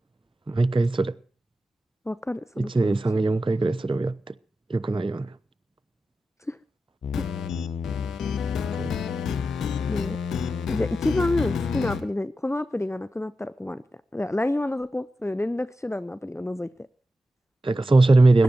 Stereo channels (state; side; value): normal; both; correlation 0.91